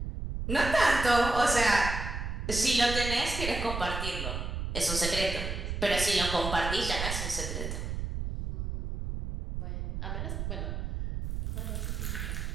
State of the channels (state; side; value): noise; right; rumble, 4 dB below the sound